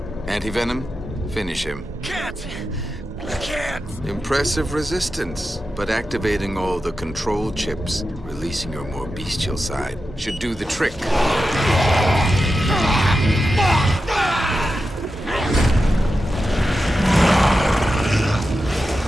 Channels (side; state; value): both; normal; correlation 0.90